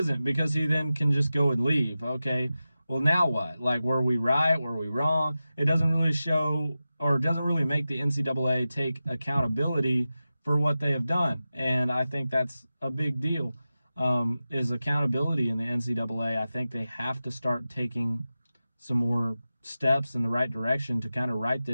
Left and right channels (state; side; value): inverted; both; correlation -0.94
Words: because he then can just go and leave. Okay, well, now what? Like, were we right? Were we wrong? It doesn't really show, or doesn't really make the NCAA take accountability for what they have done. And I think that's a big deal, is accountability in the NCAA. I think they have to start taking some more steps in the right direction to kind of right